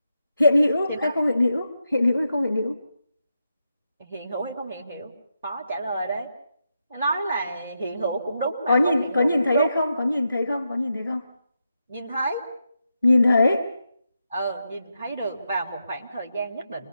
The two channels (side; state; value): both; inverted; correlation -0.86